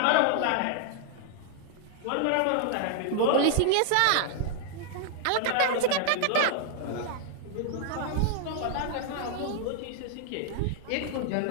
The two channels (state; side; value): different; both; correlation 0.00